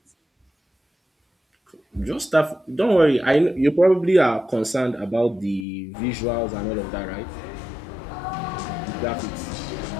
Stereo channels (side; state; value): right; drops out; at 5.7 s